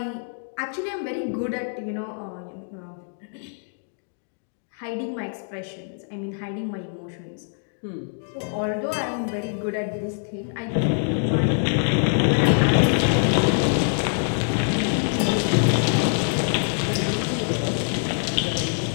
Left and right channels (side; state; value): right; silent; digital silence